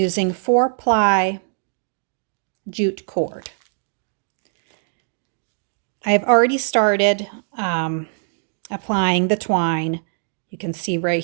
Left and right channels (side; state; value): left; silent; digital silence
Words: 4-ply jute cord. I've already started applying the twine. You can see right